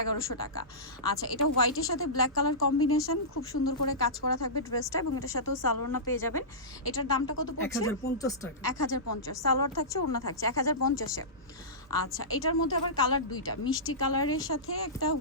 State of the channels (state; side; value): normal; both; correlation -0.19